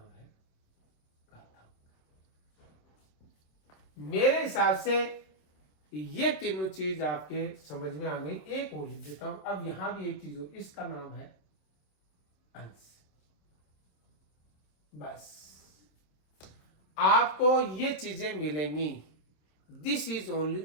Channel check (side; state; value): right; late; 27 ms